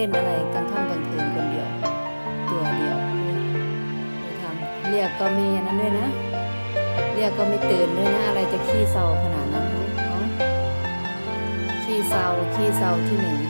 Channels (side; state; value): both; inverted; correlation -1.00